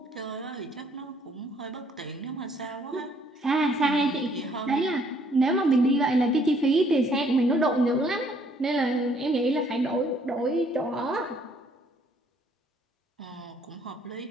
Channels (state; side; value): normal; both; correlation 0.65